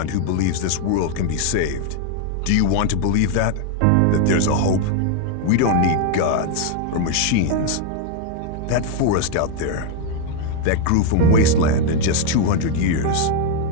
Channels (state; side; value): different; both; correlation 0.00